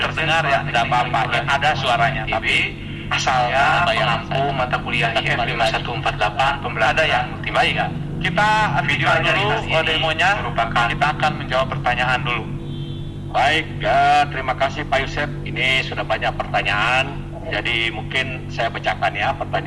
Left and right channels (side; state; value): both; identical; correlation 1.00